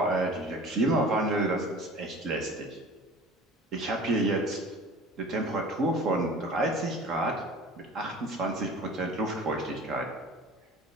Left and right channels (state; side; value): normal; both; correlation 0.42